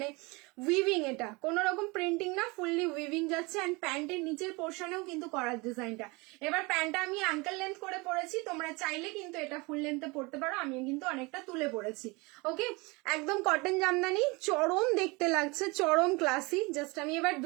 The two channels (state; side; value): quieter; left; 26.2 dB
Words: উইভিং, এটা কোনো রকম প্রিন্টিং না, ফুললি উইভিং যাচ্ছে। অ্যান্ড প্যান্টের নিচের পোর্শনেও কিন্তু করার ডিজাইনটা। এবার প্যান্টটা আমি অ্যাঙ্কেল লেন্থ করে পরেছি, তোমরা চাইলে কিন্তু এটা ফুল লেন্থে পড়তে পারো, আমি কিন্তু অনেকটা তুলে পড়েছি। ওকে, একদম কটন জামদানি, চরম দেখতে লাগছে, চরম ক্লাসি। জাস্ট আমি এবার